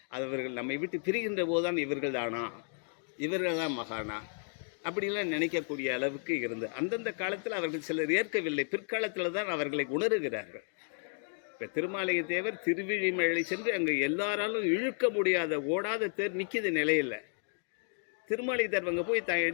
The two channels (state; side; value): silent; right; 56 dB below the other